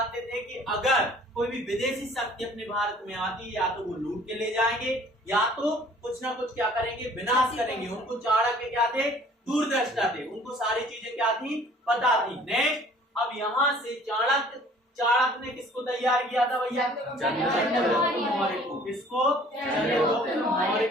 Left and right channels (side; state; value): both; normal; correlation 0.53